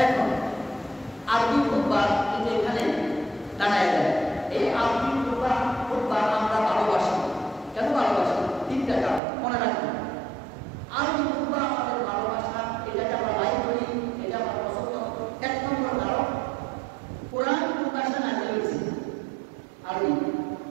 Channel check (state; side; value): drops out; left; at 9.2 s